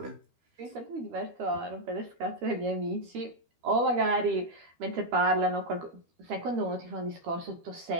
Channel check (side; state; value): left; late; 13 ms